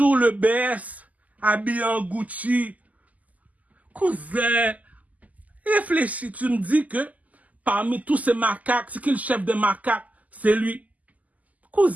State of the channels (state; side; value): late; left; 0.077 ms